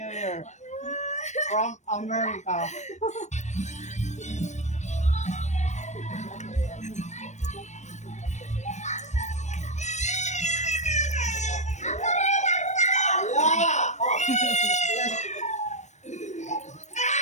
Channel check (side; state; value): right; late; 0.34 ms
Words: Year from America.